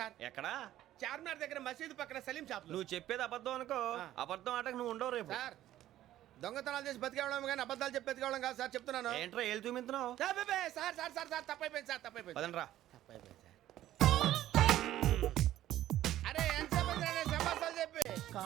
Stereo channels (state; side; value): quieter; left; 13.4 dB